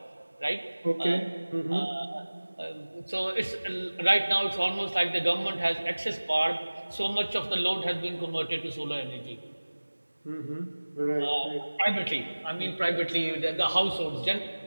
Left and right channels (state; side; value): inverted; both; correlation -1.00